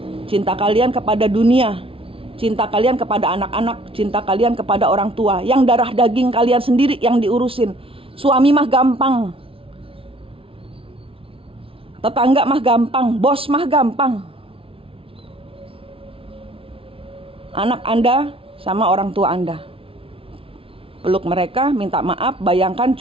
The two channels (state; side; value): late; left; 0.26 ms